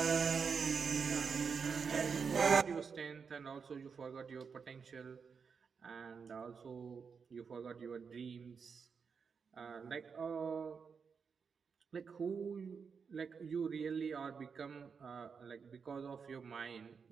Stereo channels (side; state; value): left; quieter; 5.9 dB